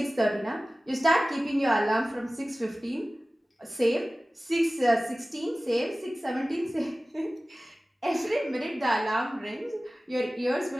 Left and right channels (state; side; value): normal; both; correlation 0.97